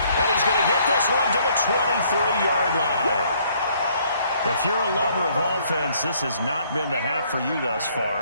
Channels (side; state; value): both; inverted; correlation -0.64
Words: And he's going to get this one to the 23-yard line. If you're a lover of offense, this has not been the half for you thus